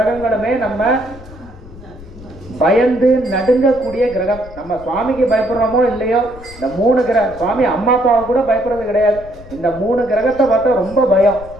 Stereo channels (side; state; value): left; noise; rumble, 18 dB below the sound